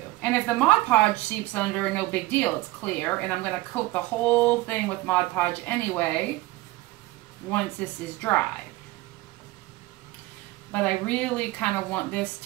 And if the Mod Podge seeps under, no big deal, it's clear. And I'm going to coat the whole thing with Mod Podge anyway once this is dry. But I really kind of want this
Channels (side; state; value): left; quieter; 19.3 dB